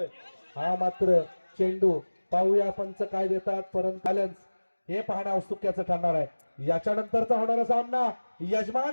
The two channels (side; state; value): both; inverted; correlation -1.00